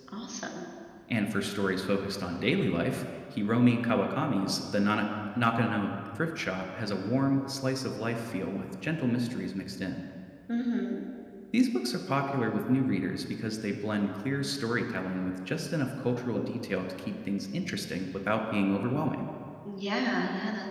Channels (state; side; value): identical; both; correlation 1.00